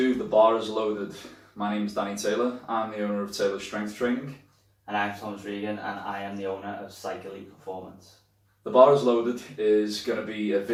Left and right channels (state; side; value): identical; both; correlation 1.00